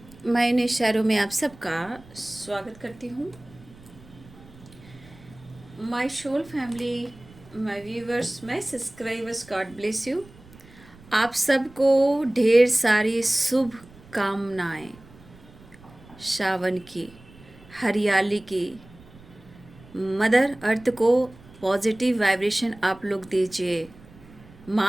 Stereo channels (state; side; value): noise; right; rumble, 23 dB below the sound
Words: मैं इन इशारों में आप सबका स्वागत करती हूँ। My soul family, my viewers, my subscribers, God bless you. आप सबको ढेर सारी शुभ कामनाएं, सावन की, हरियाली की, मदर अर्थ को पॉजिटिव वाइब्रेशन आप लोग दीजिए।